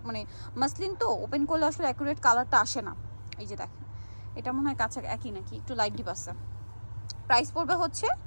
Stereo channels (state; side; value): inverted; both; correlation -1.00